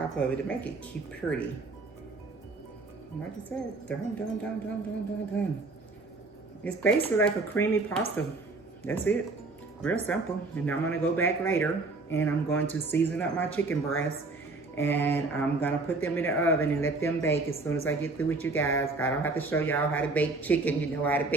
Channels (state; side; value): quieter; left; 3.5 dB